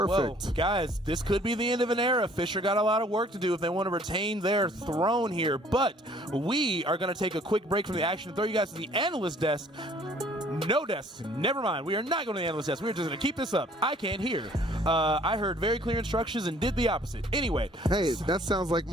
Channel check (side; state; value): both; normal; correlation 0.57